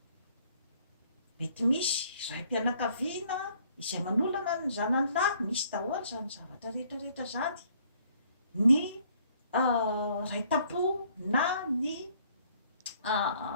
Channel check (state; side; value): inverted; both; correlation -0.63